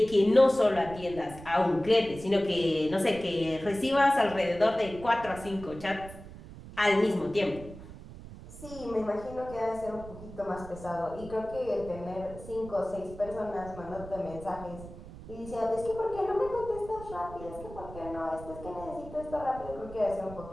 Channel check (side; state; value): right; noise; rumble, 15 dB below the sound